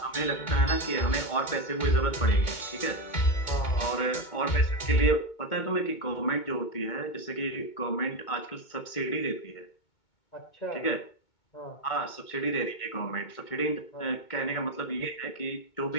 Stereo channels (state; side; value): late; right; 2.2 ms